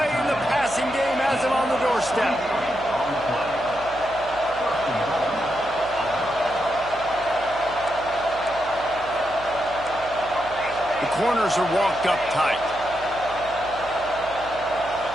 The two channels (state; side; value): noise; right; hum, 18 dB below the sound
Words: in the passing game has him on the doorstep. The corners are walked up tight.